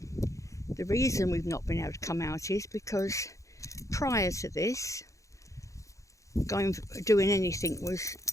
The reason we've not been able to come out is because prior to this, doing anything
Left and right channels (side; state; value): right; late; 0.15 ms